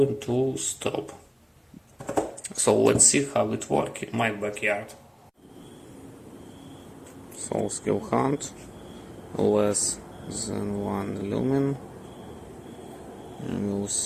to stop. So let's see how it works in my backyard. So Skilhunt, less than 1 lumen, and you'll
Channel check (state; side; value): identical; both; correlation 1.00